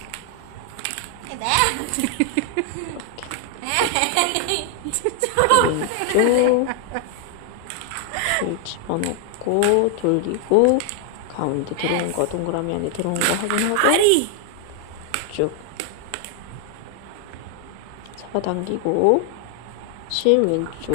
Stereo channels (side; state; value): both; different; correlation 0.00